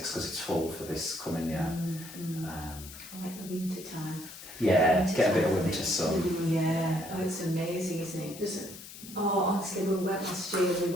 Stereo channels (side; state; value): left; noise; hiss, 14 dB below the sound